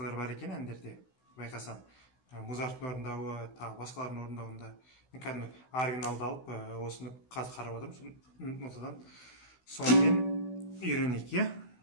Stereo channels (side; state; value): right; late; 16 ms